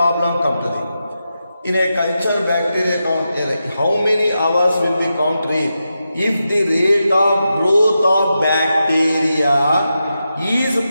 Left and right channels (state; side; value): inverted; both; correlation -0.89